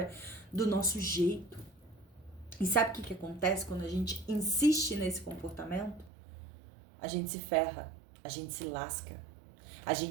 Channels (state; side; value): drops out; left; at 6.1 s